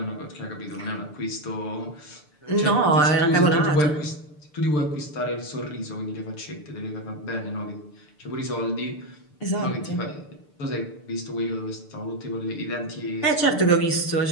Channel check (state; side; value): late; right; 6.8 ms